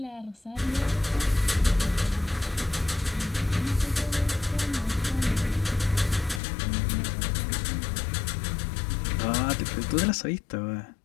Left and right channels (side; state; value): right; drops out; at 6.4 s